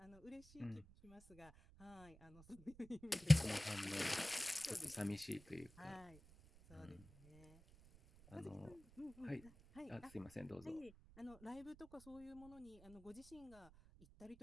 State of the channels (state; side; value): noise; right; rumble, 21 dB below the sound